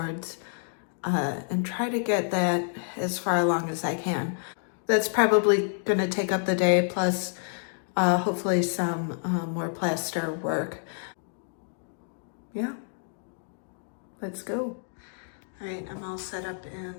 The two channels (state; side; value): silent; right; digital silence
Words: and try to get that as far along as I can. That's probably going to take up the day, plus hopefully some more plaster work. Yeah, let's go. All right, I'm all set up in